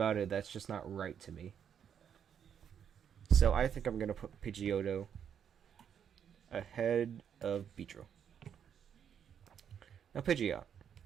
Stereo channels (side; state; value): left; quieter; 8.3 dB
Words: it that's just not right to me. So I think I'm gonna put Pidgeotto ahead of Beedrill. Now Pidgeot.